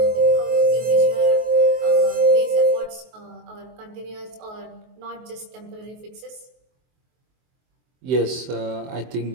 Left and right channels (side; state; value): left; late; 23 ms